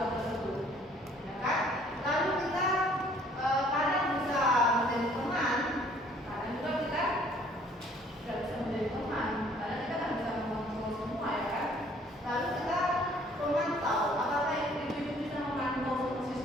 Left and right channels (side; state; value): both; normal; correlation 0.58